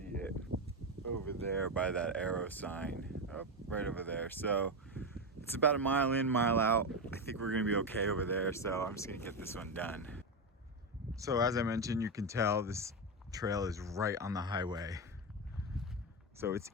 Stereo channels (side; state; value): both; normal; correlation 0.11